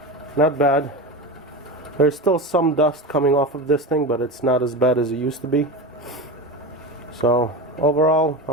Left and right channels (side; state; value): both; normal; correlation 0.23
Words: Not bad. There's still some dust coming off of this thing, but it's not as bad as it used to be. So overall,